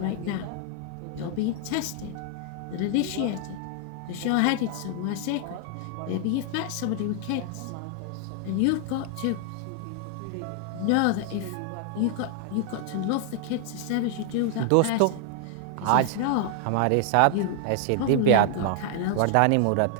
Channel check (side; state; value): both; different; correlation 0.00